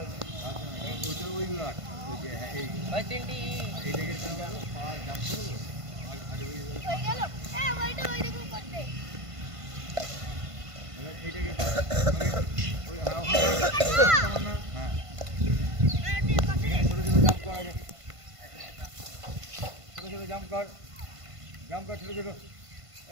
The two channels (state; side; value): late; left; 1.5 ms